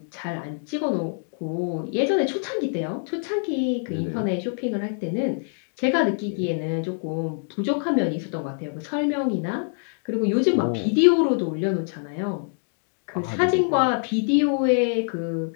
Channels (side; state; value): right; silent; 62 dB below the other